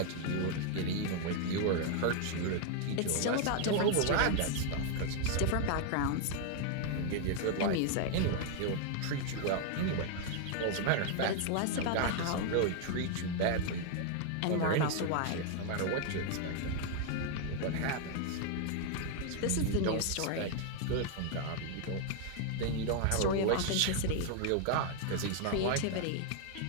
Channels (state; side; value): different; both; correlation 0.00